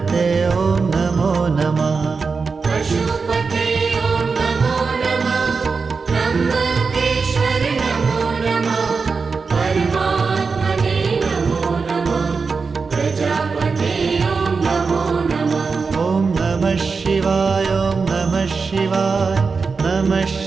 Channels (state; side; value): quieter; left; 4.8 dB